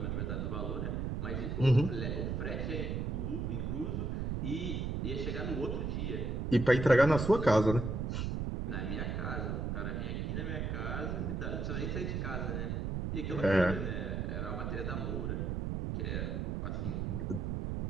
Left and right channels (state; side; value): noise; right; rumble, 1 dB below the sound